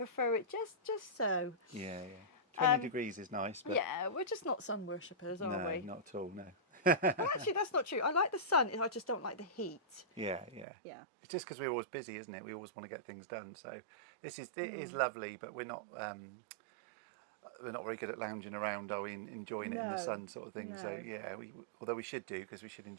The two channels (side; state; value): left; drops out; at 10.7 s